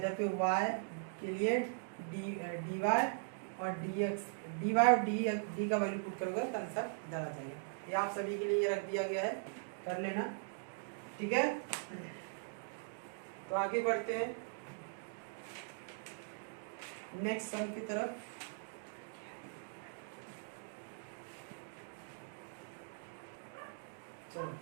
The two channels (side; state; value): left; silent; digital silence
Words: पे y के लिए dy और dx, dy और d का वैल्यू पुट करोगे तो आंसर इधर आ जाएगा, ये आप सभी के लिए रख दिया गया है, कर लेना, ठीक है, तो आगे बढ़ते हैं नेक्स्ट सम की तरफ। चलो